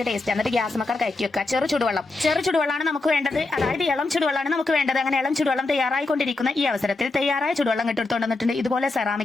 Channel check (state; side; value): quieter; right; 3.2 dB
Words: ടേസ്റ്റ് എന്നിട്ട് ഗ്യാസ് മക്കർ കയറ്റി വെക്കുക ചെറു ചുടുവെള്ളമാണ് നമുക്ക് വേണ്ടത് അതായത് ഇളം ചുടുവെള്ളമാണ് നമുക്ക് വേണ്ടത് അങ്ങനെ ഇളം ചുടുവെള്ളം തയ്യാറായിക്കൊണ്ടിരിക്കുന്ന ഈ അവസരത്തിൽ തയ്യാറായ ചുടുവെള്ളം ഇട്ടെടുത്തോണ്ട് വന്നിട്ടുണ്ട് ഇതുപോലെ